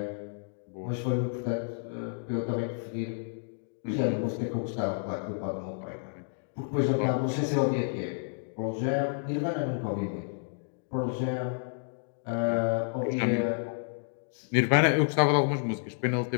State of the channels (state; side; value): silent; right; digital silence